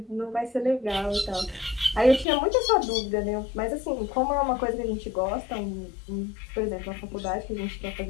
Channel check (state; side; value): drops out; right; at 2.2 s